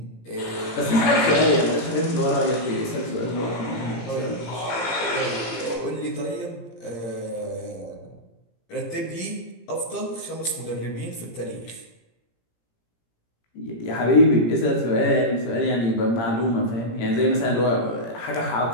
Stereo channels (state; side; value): late; right; 17 ms